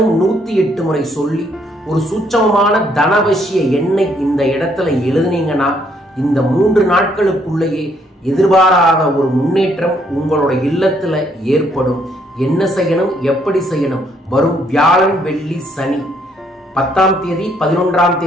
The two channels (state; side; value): normal; both; correlation 0.69